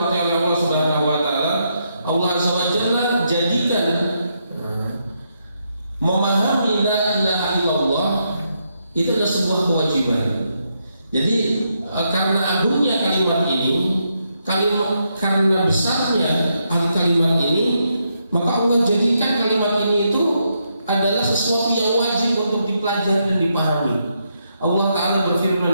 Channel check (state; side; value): inverted; both; correlation -0.80